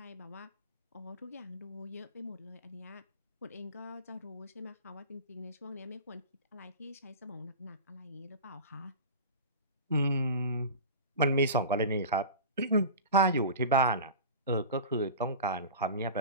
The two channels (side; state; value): both; inverted; correlation -0.32